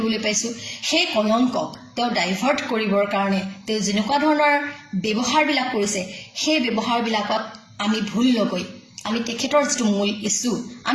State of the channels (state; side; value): identical; both; correlation 1.00